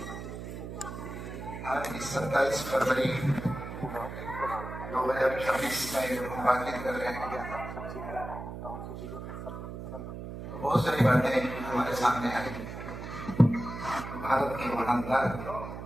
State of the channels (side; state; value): right; noise; hum, 9 dB below the sound